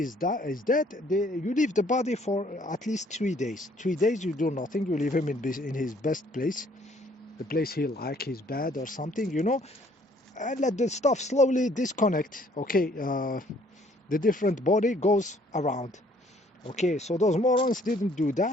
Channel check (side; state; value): both; normal; correlation 0.61